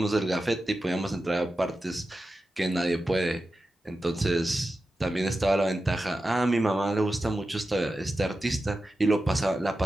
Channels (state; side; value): normal; both; correlation 0.92